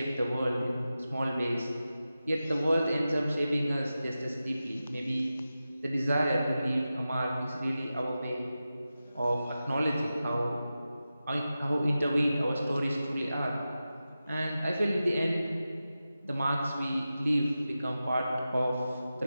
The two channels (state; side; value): inverted; both; correlation -0.93